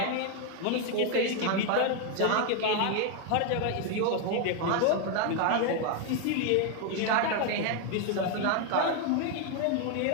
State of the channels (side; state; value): both; different; correlation 0.01